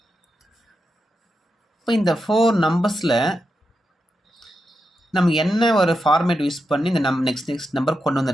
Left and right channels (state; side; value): normal; both; correlation 0.87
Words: இப்போ இந்த 4 நம்பர்ஸில் நம்ம என்ன ஒரு ஃபார்மேட் யூஸ் பண்ணி இந்த நெக்ஸ்ட் நம்பர் கொண்டு